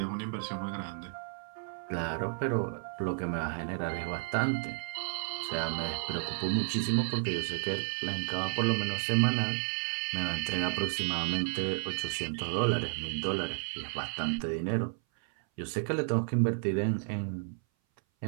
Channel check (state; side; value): silent; left; 56 dB below the other